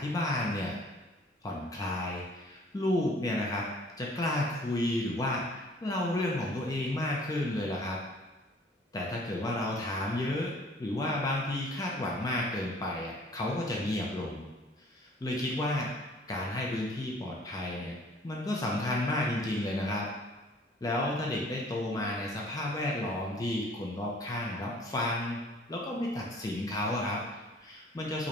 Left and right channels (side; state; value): both; normal; correlation 0.54